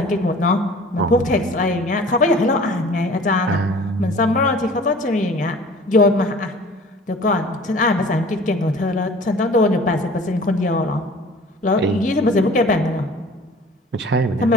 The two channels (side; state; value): both; normal; correlation 0.47